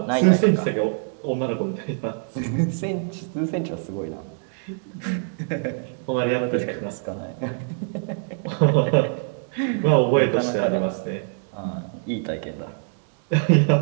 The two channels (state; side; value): silent; left; digital silence